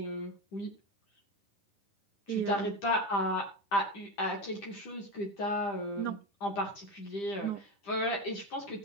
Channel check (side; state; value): right; late; 10 ms